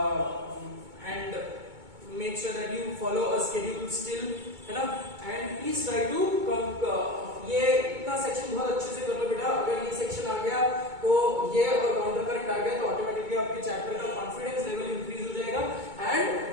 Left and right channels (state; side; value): late; left; 2.2 ms